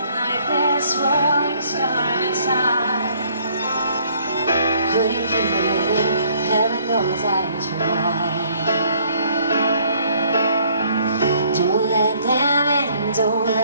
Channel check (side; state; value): both; inverted; correlation -0.62